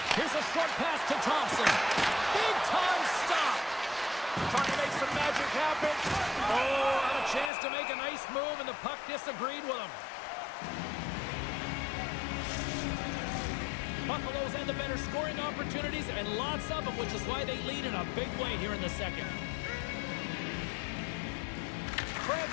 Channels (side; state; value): right; drops out; at 7.5 s